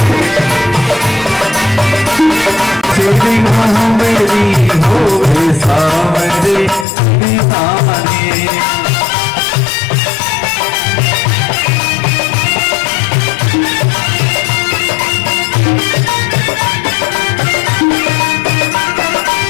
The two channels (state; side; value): drops out; right; at 6.9 s